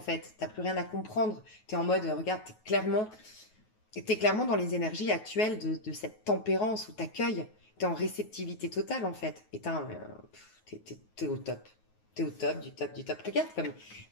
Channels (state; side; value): late; right; 9.4 ms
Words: T'as plus rien à comprendre. T'es en mode, regarde, t'es clairement dans les énergies actuelles de cette tempérance où t'accueilles. T'es en réceptivité totale, en fait. Et t'es au top. T'es au top, du top, du top. Regarde comme